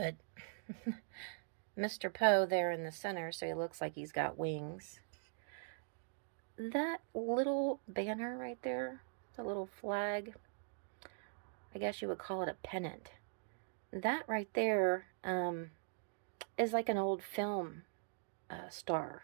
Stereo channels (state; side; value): silent; left; digital silence